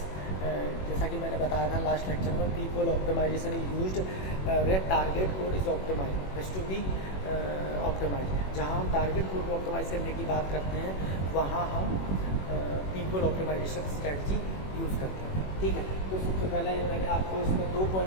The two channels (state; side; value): late; right; 21 ms